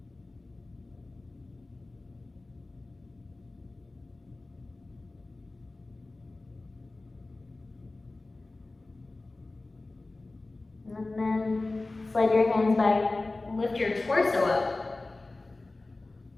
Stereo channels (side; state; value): right; quieter; 3.1 dB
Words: And then slide your hands back, lift your torso up.